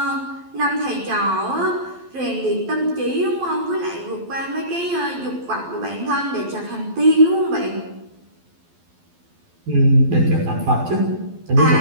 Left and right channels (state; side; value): late; left; 12 ms